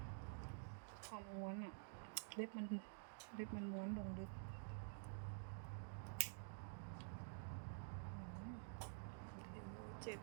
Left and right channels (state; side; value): silent; left; digital silence